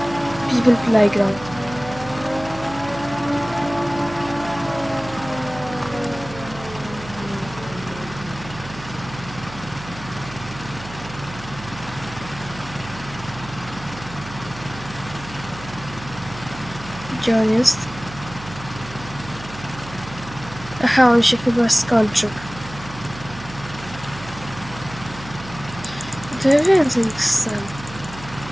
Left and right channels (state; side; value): noise; right; hum, 14 dB below the sound